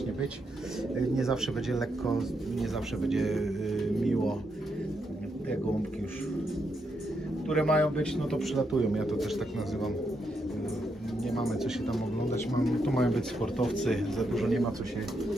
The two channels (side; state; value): both; normal; correlation 0.81